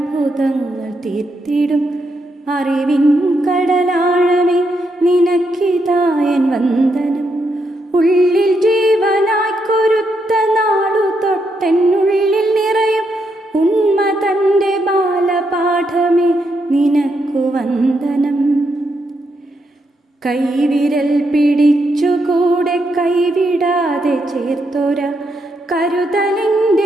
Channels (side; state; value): both; normal; correlation 0.80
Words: തീർത്തിടും അറിവിൻ കടലാഴമേ നിനക്കിതായൻ വന്ദനം. ഉള്ളിൽ ജീവനായി കൊരുത്ത നാളു തൊട്ടെന്നുള്ളിൽ നിറയും ഉണ്മ തൻ്റെ ബാലപാഠമേ നിനക്കു വന്ദനം. കൈവിരൽ പിടിച്ചുകൂടെ കൈവിടാതെ ചേർത്തൊര